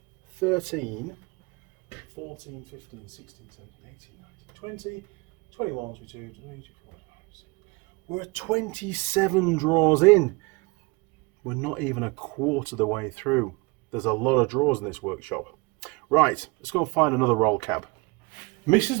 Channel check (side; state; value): left; quieter; 26.8 dB